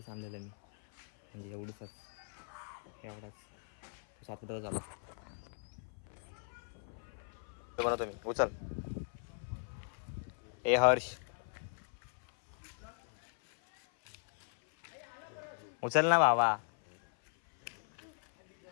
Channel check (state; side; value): silent; right; 52 dB below the other